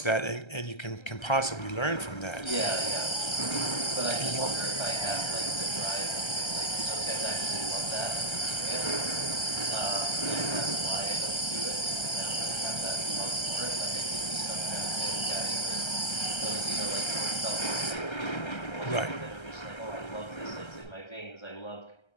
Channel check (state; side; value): late; right; 1.3 ms